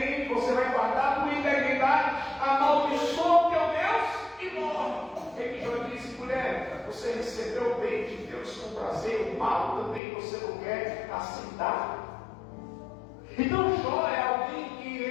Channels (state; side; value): drops out; right; at 10.0 s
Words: você vai guardar a tua integridade, amaldiçoa o teu Deus e morre. Ele Jó disse: mulher, você recebeu o bem de Deus com prazer, o mal também você não quer aceitar. Então Jó é alguém que